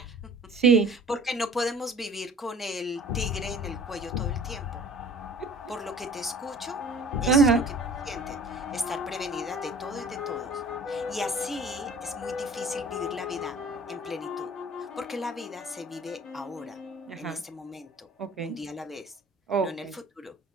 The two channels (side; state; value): both; normal; correlation 0.48